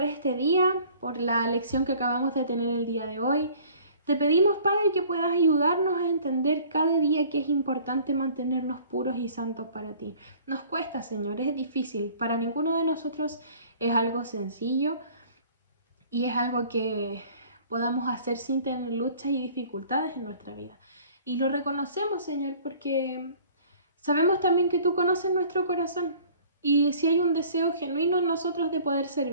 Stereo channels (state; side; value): inverted; both; correlation -0.51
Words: este día, por la lección que acabamos de tener el día de hoy. Te pedimos, Padre, que puedas ayudarnos a entender cada día que es importante mantenernos puros y santos para ti. Nos cuesta, Señor, es difícil. Para ninguno de nosotros es algo sencillo y es algo que podamos hacer sin tener luchas y dificultades en nuestra vida. Y lo reconocemos, Señor, porque sabemos también que tú conoces nuestro corazón. Y si hay un deseo genuino en nosotros de poder